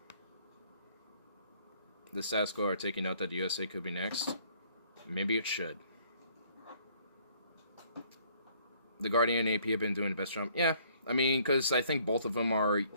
The status quo are taking note that the USA could be next. Maybe it should. The Guardian and AP have been doing the best job. Yeah, I mean, because I think both of them are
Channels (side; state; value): both; inverted; correlation -0.61